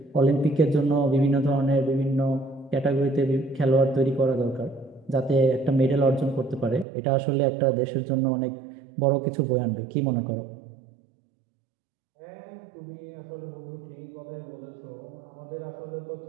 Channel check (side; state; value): left; drops out; at 6.9 s